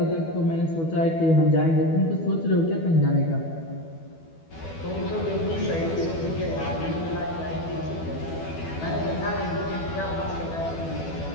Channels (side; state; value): right; late; 12 ms